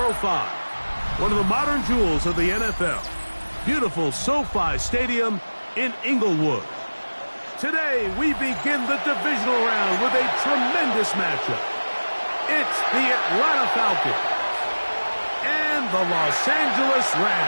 One of the modern jewels of the NFL. Beautiful SoFi Stadium in Inglewood. Today, we begin the divisional round with a tremendous matchup. It's the Atlanta Falcons and the Los Angeles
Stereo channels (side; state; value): both; inverted; correlation -1.00